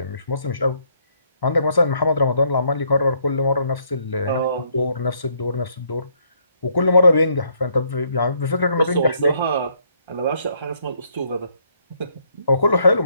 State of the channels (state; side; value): inverted; both; correlation -0.70